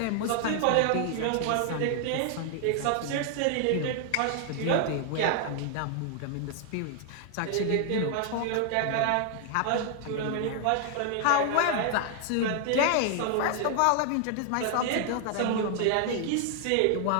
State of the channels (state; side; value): different; both; correlation 0.00